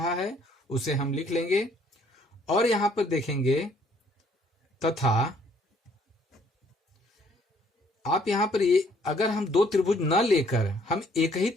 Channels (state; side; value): normal; both; correlation 0.63